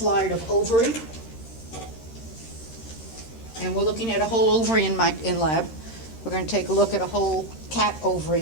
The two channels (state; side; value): late; right; 13 ms